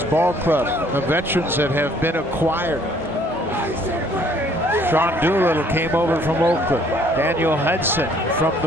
ball club, the veterans that have been acquired. Sean Doolittle came over from Oakland. Daniel Hudson from the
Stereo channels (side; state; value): both; normal; correlation 0.61